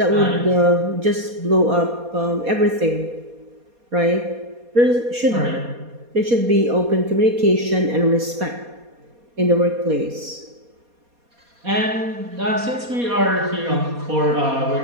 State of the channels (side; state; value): left; late; 4.2 ms